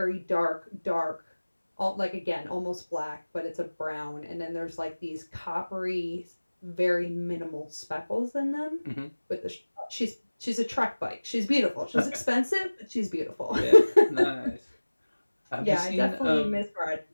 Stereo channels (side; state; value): both; inverted; correlation -1.00